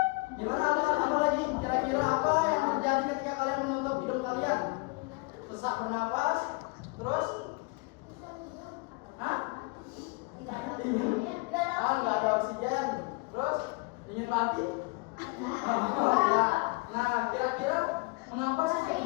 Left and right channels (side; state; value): right; quieter; 27.4 dB